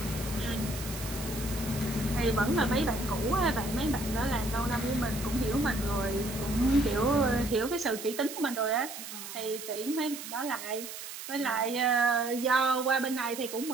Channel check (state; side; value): noise; right; hiss, 10 dB below the sound